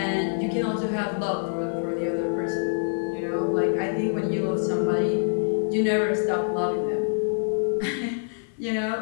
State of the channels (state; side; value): silent; right; 58 dB below the other